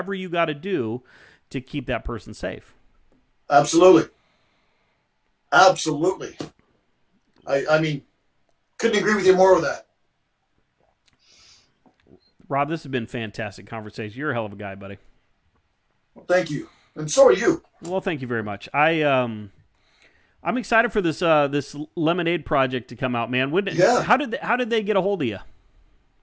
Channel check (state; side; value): identical; both; correlation 1.00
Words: you got to do to keep that person safe. Absolutely. Absolutely. I mean, couldn't agree with you more with that. Rob, this has been a fantastic conversation. You're a hell of a guy, buddy. Well, thank you. And so are you. Well, thank you very much. I'm excited for this this lemonade project to come out, man. How did they get a hold of you?